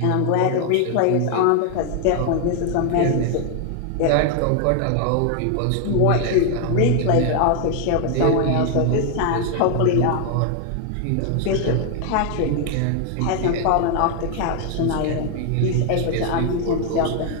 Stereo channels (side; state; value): both; different; correlation 0.00